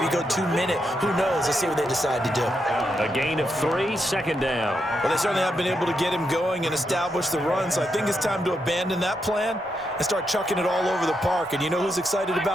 go 2-minute. Who knows? Let's see what they decide to do. A gain of 3, second down. Well, they certainly have been able to get him going and establish the run, so I think it's time to abandon that plan and start chucking it all over the park. And you know who's excited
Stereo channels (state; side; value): normal; both; correlation 0.82